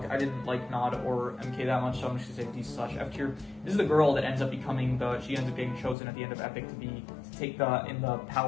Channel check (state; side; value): drops out; right; at 6.0 s